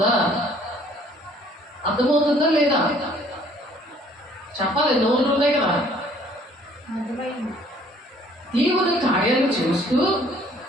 లేదా చెప్పాలి, నోళ్ళు ఉన్నాయి కదా. దేవుడి కార్యాలు చూస్తూ,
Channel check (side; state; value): both; normal; correlation 0.58